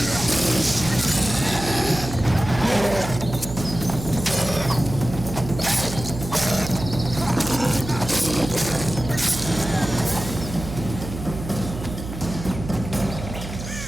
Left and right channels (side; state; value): right; noise; hum, 9 dB below the sound